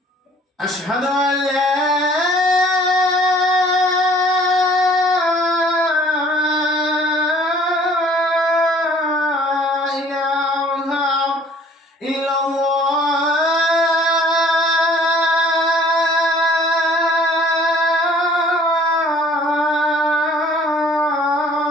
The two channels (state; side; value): normal; both; correlation 0.54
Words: أشهد أن لا إله إلا الله